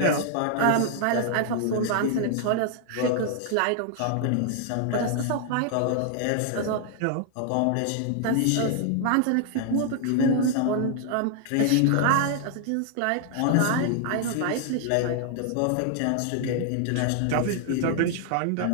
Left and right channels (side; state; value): both; different; correlation 0.00